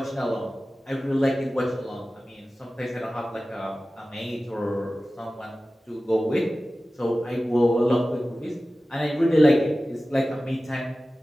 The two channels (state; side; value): normal; both; correlation 0.96